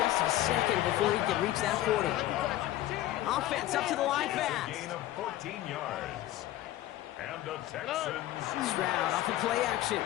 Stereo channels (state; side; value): quieter; right; 14.7 dB